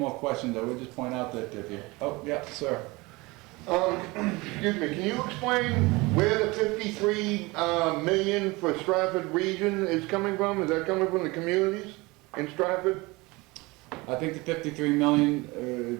questions. I would just point out that if you, oh, yeah, sir. Excuse me, can you explain where the 53 million for Stratford region is coming from? Is that coming from the communities in Stratford? I think the 53 million,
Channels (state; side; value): quieter; left; 23.5 dB